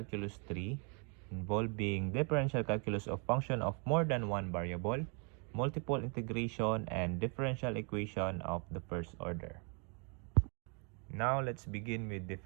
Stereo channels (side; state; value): left; quieter; 36.2 dB